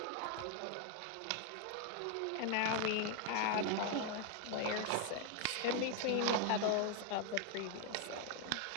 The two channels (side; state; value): both; different; correlation 0.01